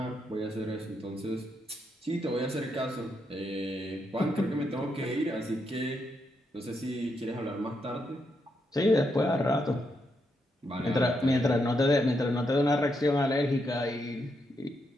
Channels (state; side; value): normal; both; correlation 0.80